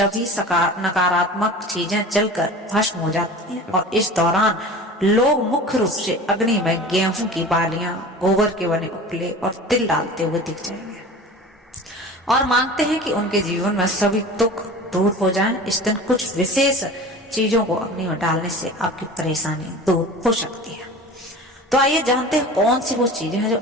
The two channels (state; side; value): normal; both; correlation 0.37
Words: नकारात्मक चीजें जलकर भस्म हो जाती हैं और इस दौरान लोग मुख्य रूप से अग्नि में गेहूं की बालियां, गोबर के बने उपले और तिल डालते हुए दिख जाएंगे और मांगते हैं कि उनके जीवन में सभी दुख दूर हो जाएं। इस दिन कुछ विशेष चीजों को अग्नि में डालने से आपकी परेशानी दूर हो सकती है। तो आइए जानते हैं कौन सी वो चीजें हैं जो